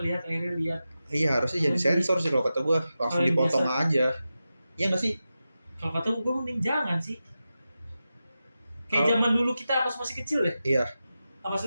Iya harusnya jadi sensor sih kalau kata gue, langsung Paling dipotong biasa. aja. Iya nggak sih? Kalau kata gue mending jangan sih. Kayak Kalau- zaman dulu kita pas masih kecil deh. Iya.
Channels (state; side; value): inverted; both; correlation -0.92